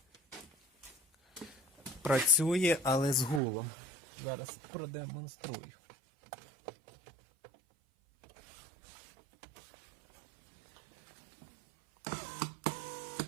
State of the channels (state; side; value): drops out; left; at 3.4 s